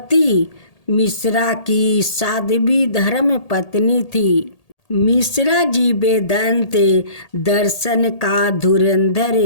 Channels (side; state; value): right; late; 1.8 ms